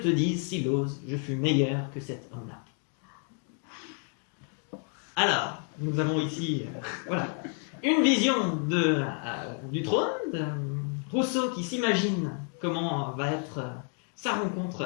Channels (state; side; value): quieter; right; 39.7 dB